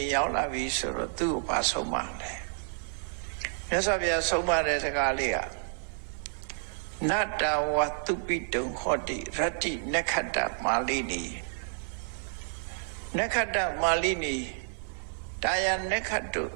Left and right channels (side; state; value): left; silent; 58 dB below the other